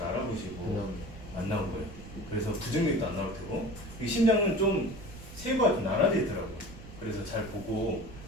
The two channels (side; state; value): right; noise; rumble, 15 dB below the sound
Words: 알아보시고 안 나올 거예요. 그래서 부정맥도 안 나올 테고 이 심장은 좀 세부가 좀 나눠져 있더라고요. 그래서 잘 보고